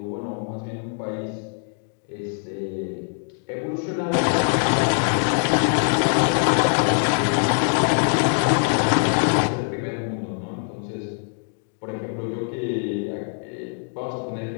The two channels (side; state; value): right; silent; 63 dB below the other